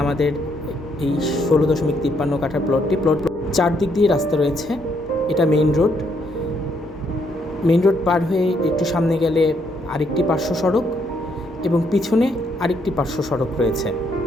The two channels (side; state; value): both; normal; correlation 0.73